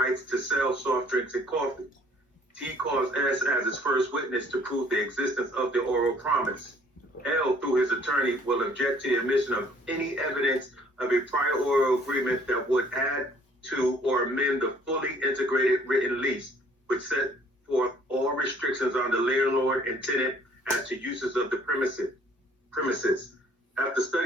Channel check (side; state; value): both; normal; correlation 0.58